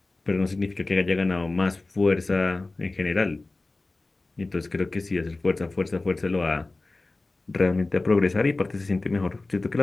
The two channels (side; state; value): right; quieter; 3.2 dB